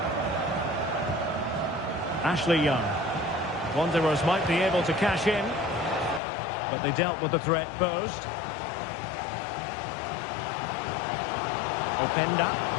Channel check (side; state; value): right; drops out; at 6.2 s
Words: Ashley Young. Wanderers might be able to cash in, but they dealt with the threat posed. Openda.